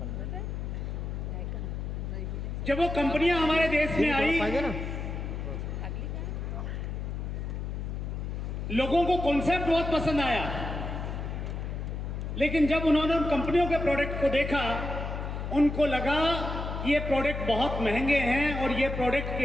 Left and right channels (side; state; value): left; noise; hum, 4 dB below the sound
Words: जब वो कंपनियां हमारे देश में आई, लोगों को कॉन्सेप्ट बहुत पसंद आया, लेकिन जब उन्होंने उन कंपनियों के प्रोडक्ट को देखा, उनको लगा कि ये प्रोडक्ट बहुत महंगे हैं और ये प्रोडक्ट